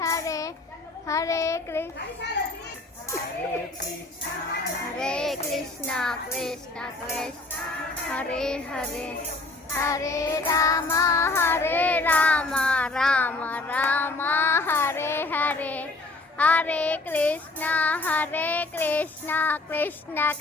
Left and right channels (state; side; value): quieter; right; 3.1 dB